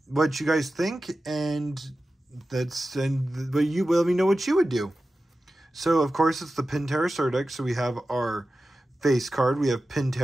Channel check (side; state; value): both; normal; correlation 0.94